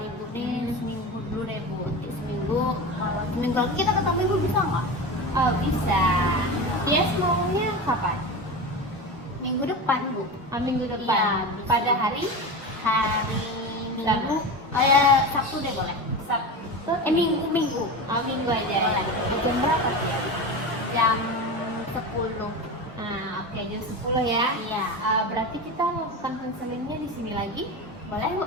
nih seminggu dulu deh Bu. Nanti seminggu, kalau seminggu lagi kita ketemu Ibu bisa nggak? Oh, bisa. Tias maunya kapan? Minggu depan Bu. Minggu depan. Iya, bisa. Pada hari Minggu, kayak Sabtu deh boleh. Sabtu. Minggu. Minggu aja. Boleh. Jam berapa ya? Jam 10. Oke, jam 10 ya. Iya. Berarti kita lakukan konselingnya di sini lagi? Boleh Bu.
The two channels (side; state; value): both; normal; correlation 0.25